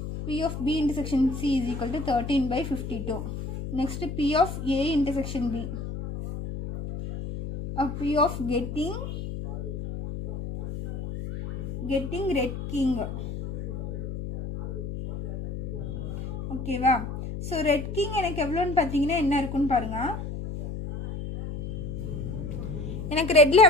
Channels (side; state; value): left; noise; hum, 6 dB below the sound